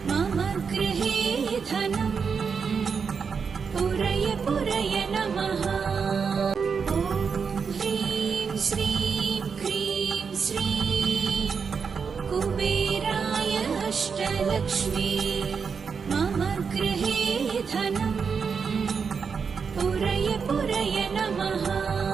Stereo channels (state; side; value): quieter; left; 5.9 dB